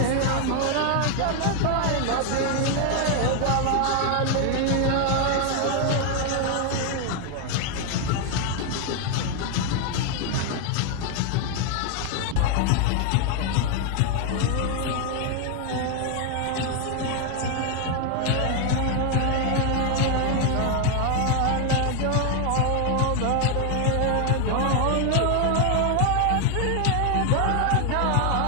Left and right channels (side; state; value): both; different; correlation 0.00